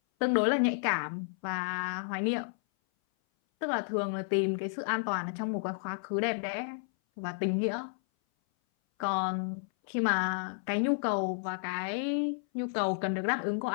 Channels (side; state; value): right; silent; 57 dB below the other